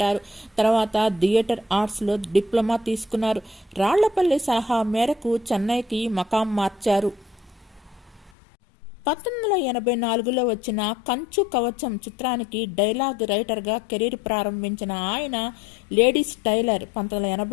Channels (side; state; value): right; drops out; at 8.3 s